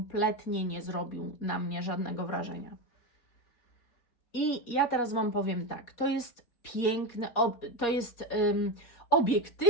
nie zrobił na mnie żadnego wrażenia. I ja teraz Wam powiem tak, to jest piękny, to jest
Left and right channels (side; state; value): right; late; 4.2 ms